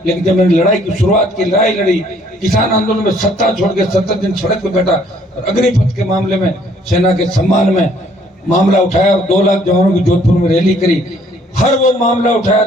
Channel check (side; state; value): both; normal; correlation 0.62